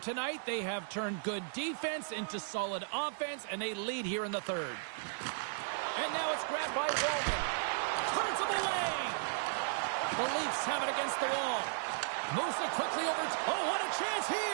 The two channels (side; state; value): left; silent; digital silence